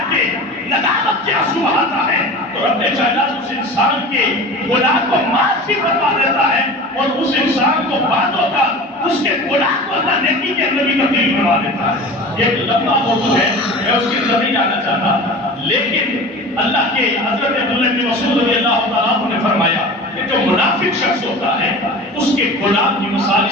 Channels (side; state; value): both; normal; correlation 0.36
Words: کے ندامت کے آنسو بہاتا ہے، تو رب کائنات اس انسان کے گناہ کو معاف بھی فرما دیتا ہے، اور اس انسان کو بعدوں کا اس کے گناہ کو اللہ نیکی کے اندر بھی تبدیل کروا دیتا ہے۔ ایک لمبا موضوع ہے، میں اس کی طرف نہیں جانا چاہتا، لیکن اللہ کے حضرت عبداللہ بن مسعود رضی اللہ تعالیٰ عنہ نے فرمایا کہ جو منافق شخص ہوتا ہے اس کے گناہ کی مثال